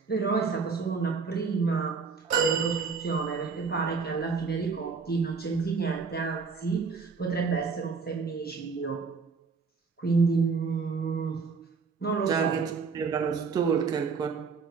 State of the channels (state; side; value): quieter; left; 5.1 dB